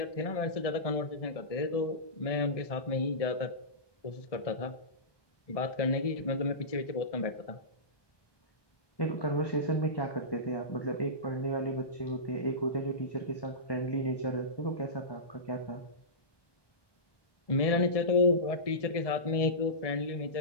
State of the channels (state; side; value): late; right; 1.2 ms